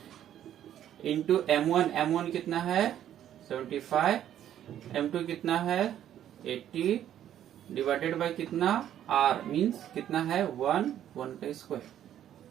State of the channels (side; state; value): left; quieter; 11.0 dB